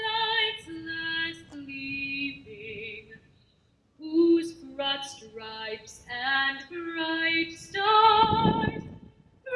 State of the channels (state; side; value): identical; both; correlation 1.00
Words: last gleaming, whose broad stripes and bright stars